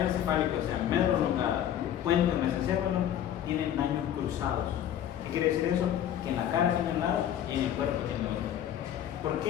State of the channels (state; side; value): quieter; right; 10.6 dB